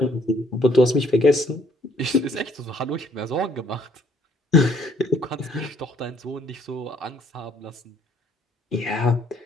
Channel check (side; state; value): both; normal; correlation 0.64